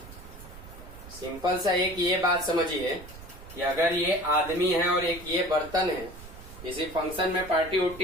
सिंपल सा एक ये बात समझिए कि अगर ये आदमी है और एक ये बर्तन है किसी फंक्शन में, पार्टी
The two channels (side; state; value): right; noise; rumble, 16 dB below the sound